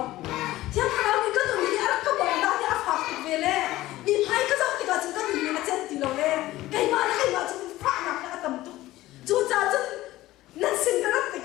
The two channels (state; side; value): quieter; right; 16.5 dB